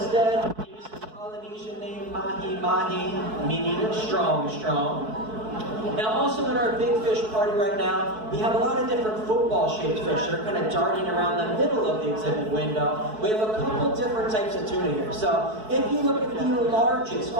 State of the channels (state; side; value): late; left; 4.6 ms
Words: they use the Polynesian name Mahi Mahi, meaning strong, strong. Now also in our big fish party right now, we have a lot of different football-shaped fish that are kind of darting around the middle of the exhibit window. We have a couple different types of tuna here. So if you look at the largest,